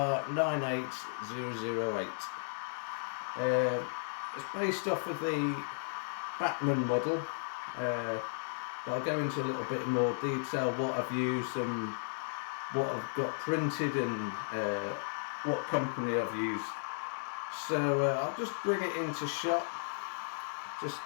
It's based off of the Bachmann model, but I'll go into a little bit more detail what I've used and what I've got printed and what company I've used. So I'll just bring it into shot. Just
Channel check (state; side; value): silent; right; digital silence